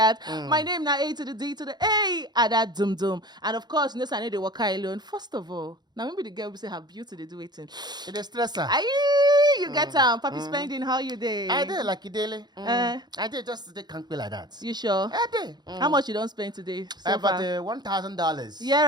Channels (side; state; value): left; late; 0.20 ms